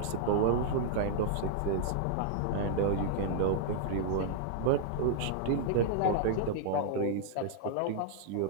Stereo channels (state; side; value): different; both; correlation 0.00